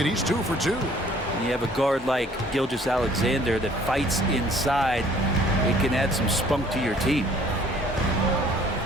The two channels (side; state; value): both; normal; correlation 0.57